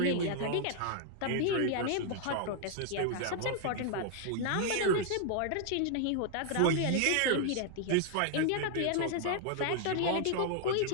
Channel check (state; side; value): different; both; correlation 0.00